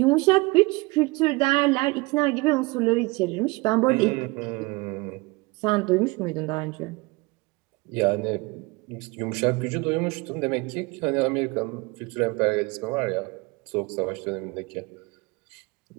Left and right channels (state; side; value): quieter; left; 24.8 dB